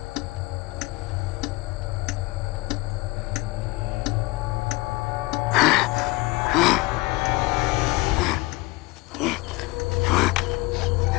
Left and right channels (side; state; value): right; quieter; 22.1 dB